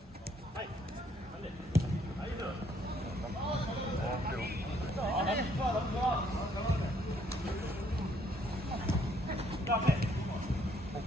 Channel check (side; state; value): both; normal; correlation 0.67